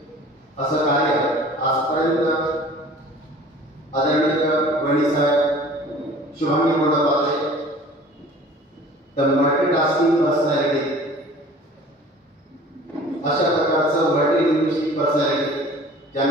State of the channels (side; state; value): both; normal; correlation 0.46